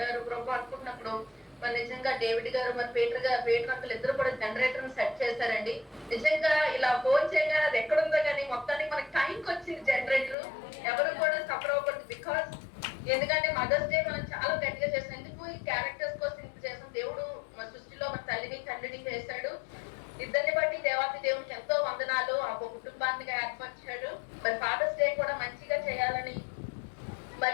ప్రభు అనుకున్నప్పుడు మరి నిజంగా డేవిడ్ గారు మరి పేటర్ అంకులు ఇద్దరు కూడా జనరేటర్ సెట్ చేశారండి. నిజంగా ఇలా ఫోన్ చేయగానే అది ఎక్కడుందో కానీ మొత్తానికి మనకి టైంకి వచ్చింది జనరేటర్. ఎవరు కూడా సఫర్ అవ్వకూడదు. బికాస్ ఎందుకంటే మదర్స్ డే మనం చాలా గట్టిగా చేసాం. ఎందుకు ఈ క్యారెక్టర్స్ కోసం ఇంత చేసాం. దేవుడు మన సృష్టిలో మన తల్లిని తండ్రిని చేశాడు. ఇద్దరిని బట్టి దేవాతి దేవునికి ఎంతో వందనాలు. ఆ కుటుంబాన్ని ఏర్పరిచాడు. మరి ఫాదర్స్ డే కూడా మంచిగా చేయాలని.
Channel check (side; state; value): right; drops out; at 10.4 s